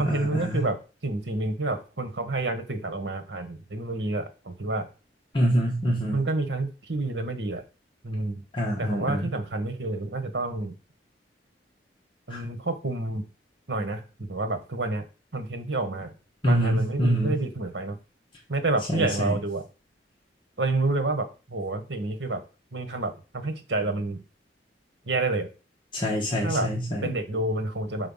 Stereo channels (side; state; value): both; normal; correlation 0.46